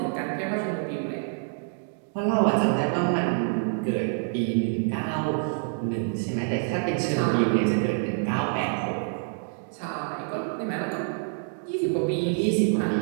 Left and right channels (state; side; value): silent; left; 60 dB below the other